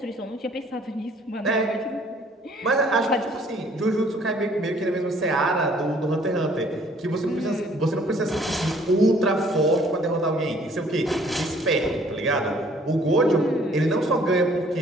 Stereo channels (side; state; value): both; normal; correlation 0.59